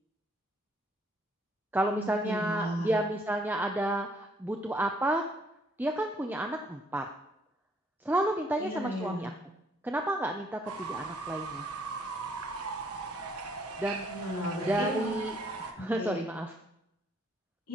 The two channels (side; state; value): both; normal; correlation 0.66